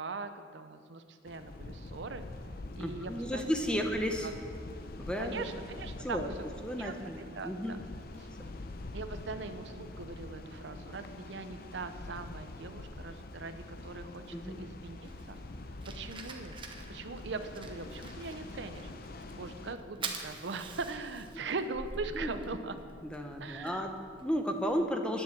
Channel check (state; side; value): normal; both; correlation 0.49